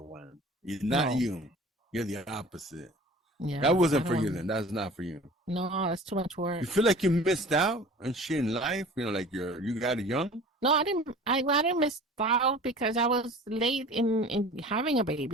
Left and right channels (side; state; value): both; normal; correlation 0.43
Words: one. Not you. You're the opposite. Yeah, that wasn't for you then. That's not for you. No, that's too much work. You feel like you missed out and shit in life? You know, like you got it young? No, I didn't. I didn't miss out because I was late in having a